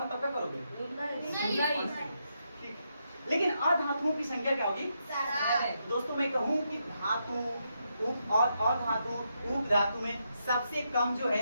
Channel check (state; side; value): inverted; both; correlation -0.82